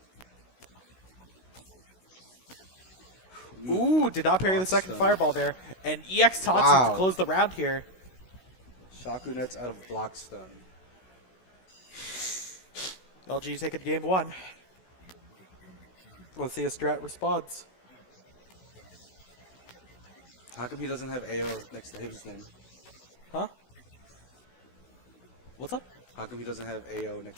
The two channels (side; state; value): right; late; 16 ms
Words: Ooh, did not parry the Block second stun. fireball there. And EX Tatsu Wow. to close the round here. Shaku nets out of block stun. LG taking game 1. Let's see if Strat responds. How come he doesn't have AO next to his name? Huh? What's up? How come he doesn't have AO